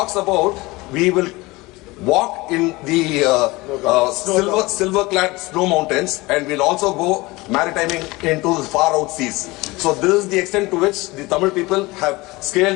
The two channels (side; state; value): right; quieter; 22.0 dB